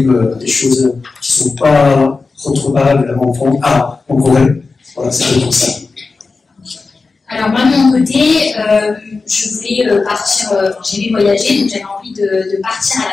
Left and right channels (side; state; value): right; quieter; 4.1 dB